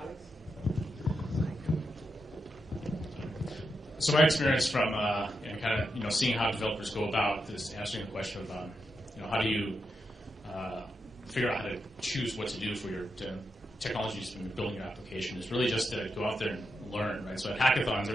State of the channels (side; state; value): both; normal; correlation 0.86